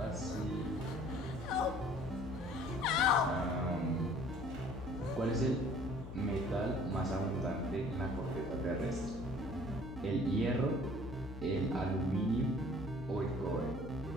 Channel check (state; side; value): noise; left; hum, 12 dB below the sound